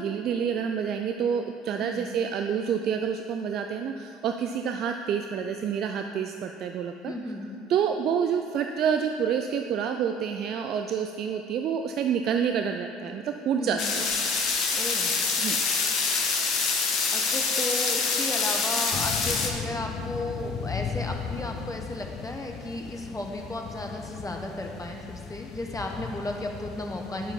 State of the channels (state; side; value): normal; both; correlation 0.48